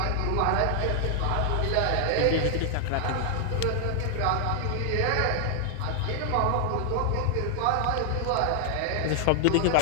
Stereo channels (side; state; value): both; different; correlation 0.00